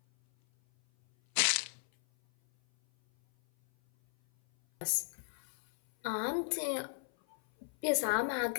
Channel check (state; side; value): silent; right; 55 dB below the other